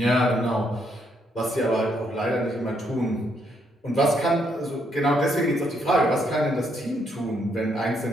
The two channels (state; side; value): normal; both; correlation 0.74